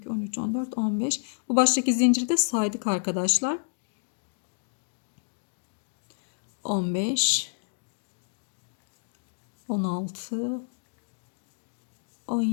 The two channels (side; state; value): right; silent; digital silence